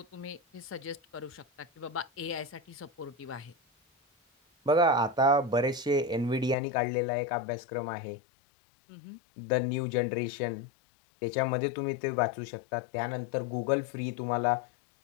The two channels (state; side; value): drops out; right; at 6.6 s